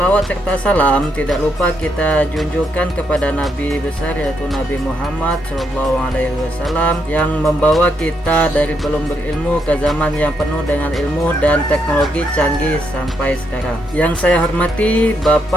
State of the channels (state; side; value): normal; both; correlation 0.78